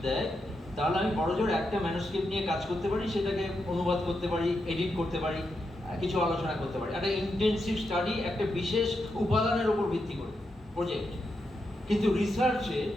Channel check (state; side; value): normal; both; correlation 0.85